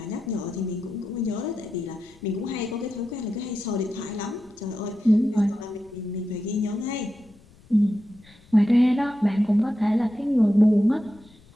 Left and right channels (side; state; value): left; noise; rumble, 26 dB below the sound